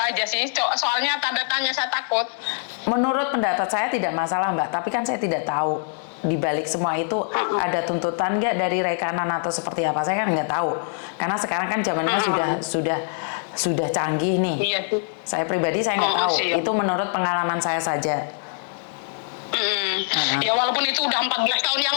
sih. Soalnya tanda tanya saya takut. Menurut pendapat saya tidak masalah Mbak, tapi kan saya tidak tahu di balik semua itu ada tuntutan nggak dari rekanan atau seperti apa, saya kan nggak tahu. Karena sekarang kan zamannya sudah canggih nih. Iya. Saya pribadi saya nggak tahu. Siap. Itu menurut pengalaman saya saja. Ya walaupun itu udah 14 tahun yang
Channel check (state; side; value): silent; right; 63 dB below the other